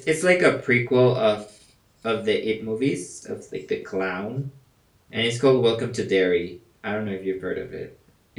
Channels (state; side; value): identical; both; correlation 1.00